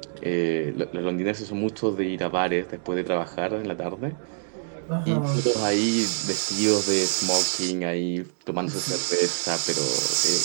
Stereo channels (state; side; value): silent; left; digital silence